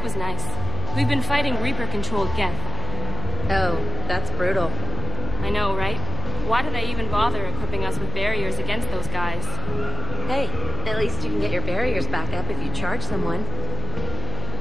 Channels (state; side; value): noise; left; hum, 3 dB below the sound